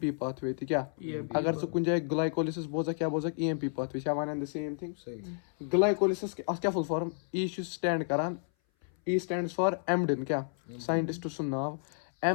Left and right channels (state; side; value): silent; right; 57 dB below the other